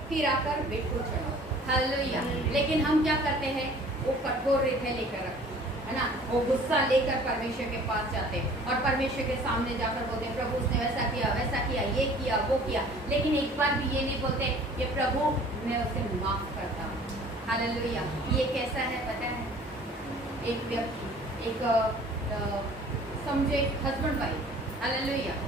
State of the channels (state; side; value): normal; both; correlation 0.50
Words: फिर आकर भेंट को चढ़ाओ। हालेलुया। लेकिन हम क्या करते हैं, वो कठोर हृदय लेकर रखते है ना, वो गुस्सा लेकर परमेश्वर के पास जाते हैं और परमेश्वर के सामने जाकर बोलते हैं, प्रभु उसने वैसा किया, ये किया, वो किया। लेकिन एक बार भी ये नहीं बोलते कि प्रभु मैं उसे माफ करता हूँ। हालेलुया। ये कैसा है पता है, एक व्यक्ति, एक समझे हस्बैंड वाइफ, हालेलुया,